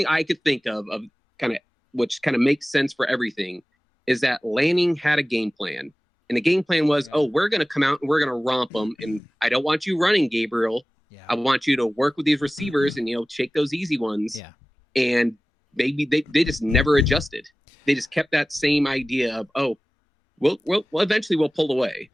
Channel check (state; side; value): normal; both; correlation 0.97